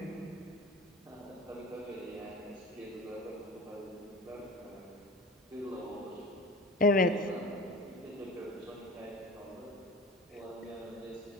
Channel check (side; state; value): both; normal; correlation 0.37